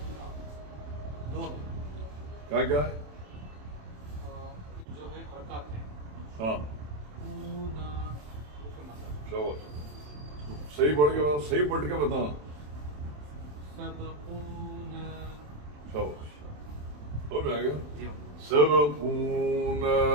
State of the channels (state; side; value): late; left; 27 ms